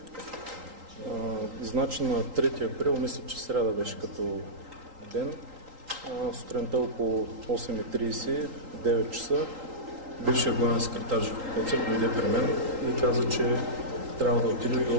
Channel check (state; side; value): late; left; 3.8 ms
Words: Значи на 3 април, мисля, че сряда беше като ден, сутринта около 8:30, 9 часа, бившия главен секретар Живко Коцев дойде при мен и каза, че трябва да отиде